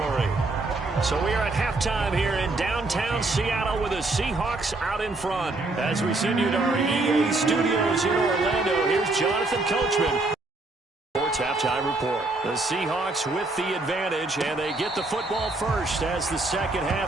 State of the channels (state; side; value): quieter; left; 3.1 dB